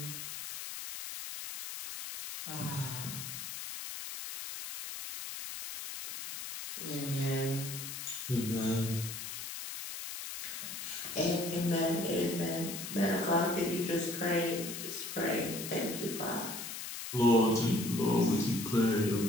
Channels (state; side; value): noise; left; hiss, 7 dB below the sound